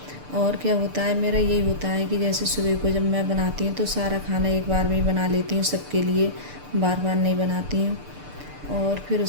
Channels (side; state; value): left; late; 6.8 ms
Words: और क्या होता है मेरा, यही होता है कि जैसे सुबह को जब मैं बनाती हूँ तो सारा खाना एक बार में ही बना लेती हूँ सबके लिए, बार बार नहीं बनाती हूँ। और फिर